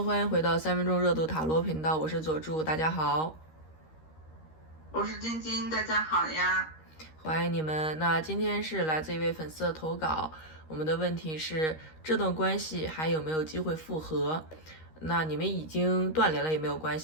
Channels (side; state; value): right; late; 13 ms